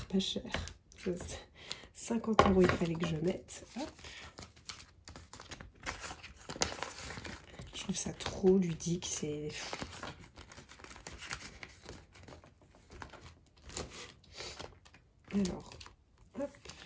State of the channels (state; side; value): identical; both; correlation 1.00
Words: pas chères. 50 €, il fallait que je mette. Hop. Je trouve ça trop ludique. C'est... Alors, hop,